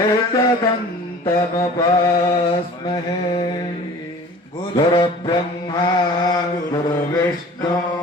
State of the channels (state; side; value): normal; both; correlation 0.44